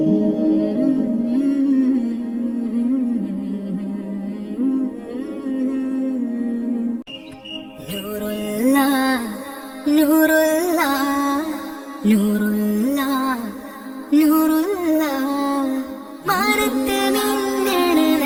നൂറുല്ലാ നൂറുല്ലാ നൂറുല്ലാ മാനത്ത് മിന്നണ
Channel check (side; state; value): both; identical; correlation 1.00